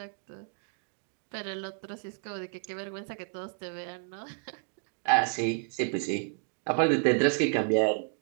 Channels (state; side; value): silent; left; 57 dB below the other